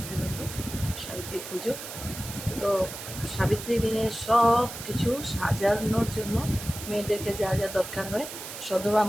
ব্রত সাবিত্রী পুজো তো সাবিত্রী দিনে সব কিছু সাজানোর জন্য মেয়েদেরকে যা যা দরকার হয় সধবা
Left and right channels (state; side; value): noise; right; hiss, 10 dB below the sound